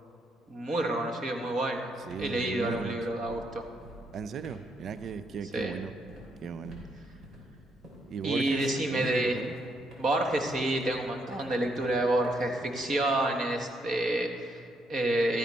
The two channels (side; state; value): both; normal; correlation 0.75